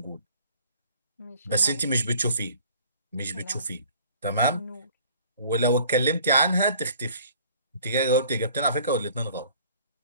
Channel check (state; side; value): inverted; both; correlation -0.53